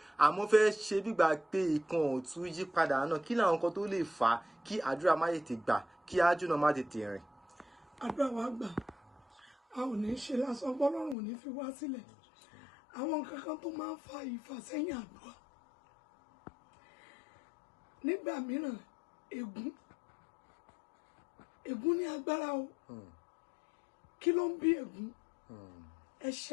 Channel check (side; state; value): right; drops out; at 11.2 s